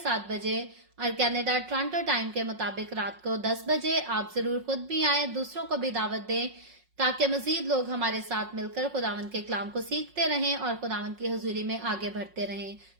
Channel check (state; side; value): late; left; 5.5 ms